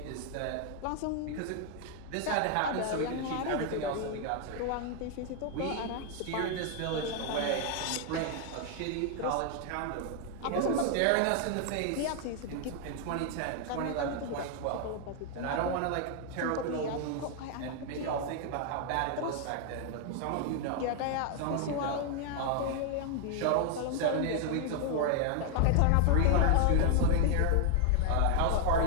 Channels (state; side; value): different; both; correlation 0.00